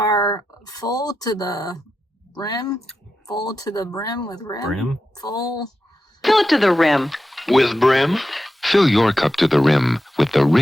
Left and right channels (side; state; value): both; normal; correlation 0.90